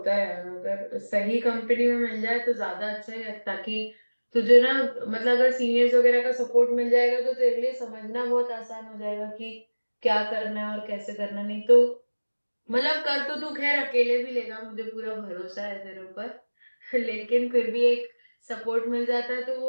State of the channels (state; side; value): inverted; both; correlation -1.00